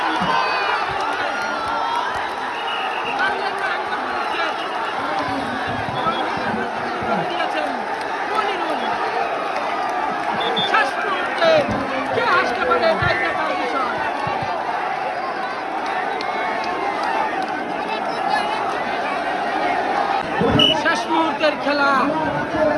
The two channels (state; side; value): identical; both; correlation 1.00